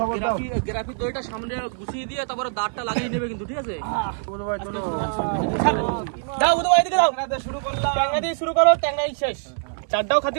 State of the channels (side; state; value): left; silent; 55 dB below the other